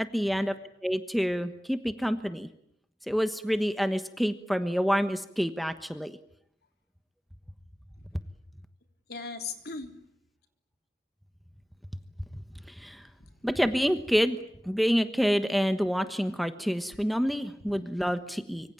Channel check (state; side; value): normal; both; correlation 0.97